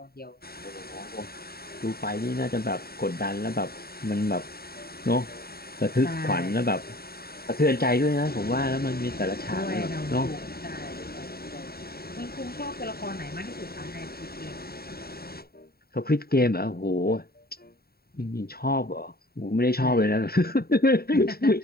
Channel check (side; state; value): right; late; 0.45 ms